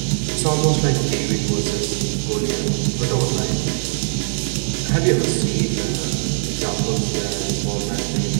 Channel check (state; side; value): silent; left; 61 dB below the other